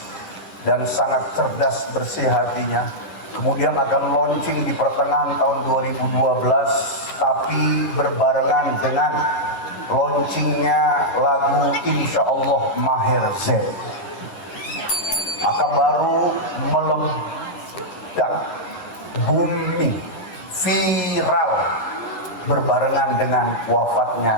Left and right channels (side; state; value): right; late; 11 ms